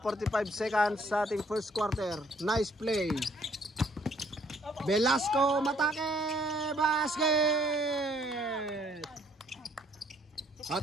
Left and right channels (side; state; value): both; normal; correlation 0.63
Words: 45 seconds sa ating first quarter. Nice play. Velasco matake, basket.